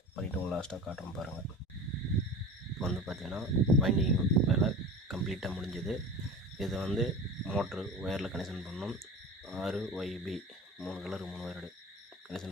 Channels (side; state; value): both; normal; correlation 0.35